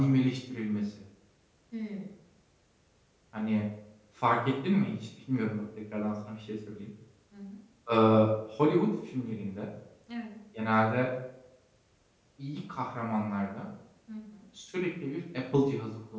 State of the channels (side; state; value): both; identical; correlation 1.00